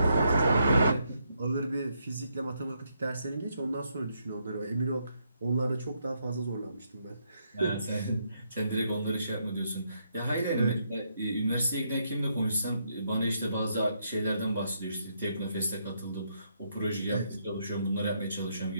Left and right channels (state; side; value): inverted; both; correlation -0.76